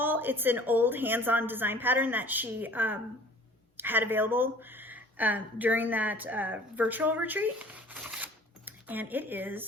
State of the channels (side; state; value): both; normal; correlation 0.49